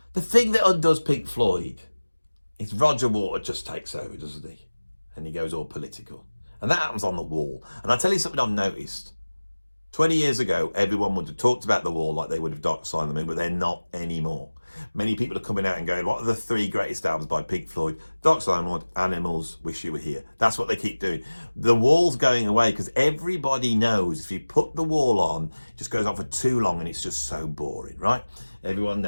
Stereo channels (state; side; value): inverted; both; correlation -1.00